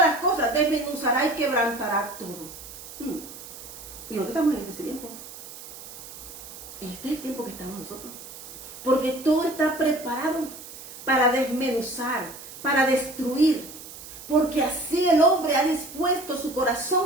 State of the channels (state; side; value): noise; right; hiss, 14 dB below the sound